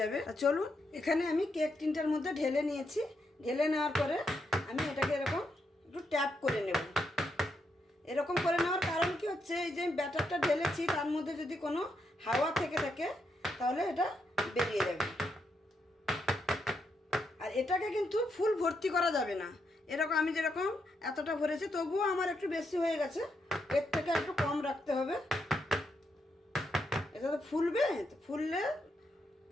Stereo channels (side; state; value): both; normal; correlation 0.80